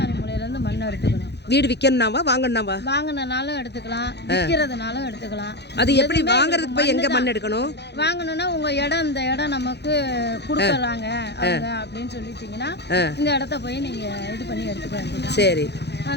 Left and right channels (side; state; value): right; late; 0.49 ms